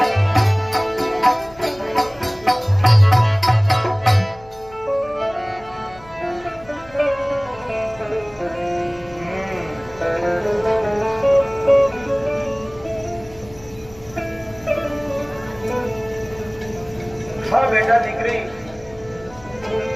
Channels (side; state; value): left; noise; hum, 23 dB below the sound